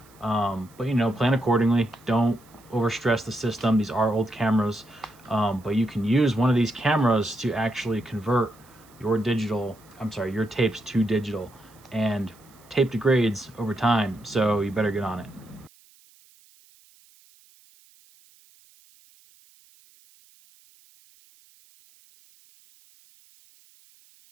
But plan accordingly. Don't overstress the system. These are old cameras, but you can use one of these cameras to actually convert your tapes to digital, and tape degrades over time, so you better get on it.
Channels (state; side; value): noise; right; hiss, 28 dB below the sound